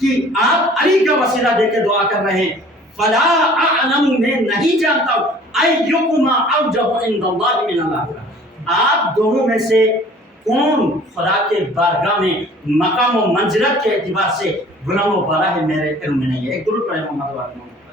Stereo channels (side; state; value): both; normal; correlation 0.50